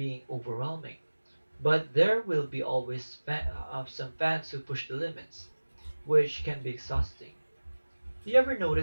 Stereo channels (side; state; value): both; inverted; correlation -1.00